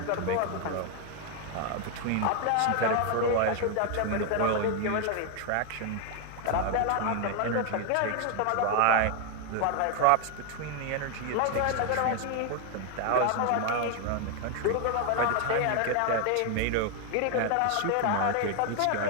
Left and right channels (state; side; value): different; both; correlation 0.01